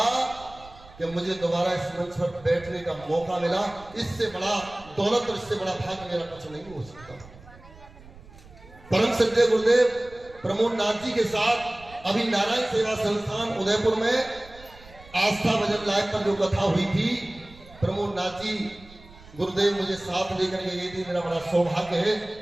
कि मुझे दोबारा इस मंच पर बैठने का मौका मिला। इससे बड़ा दौलत और इससे बड़ा भाग्य मेरा कुछ नहीं हो सकता। परम श्रद्धेय गुरुदेव प्रमोद नाथ जी के साथ अभी नारायण सेवा संस्थान उदयपुर में आस्था भजन लाइव पर जो कथा हुई थी, प्रमोद नाथ जी गुरुदेव मुझे साथ लेकर के गई थी। मेरा बड़ा सौभाग्य है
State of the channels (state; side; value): noise; right; rumble, 21 dB below the sound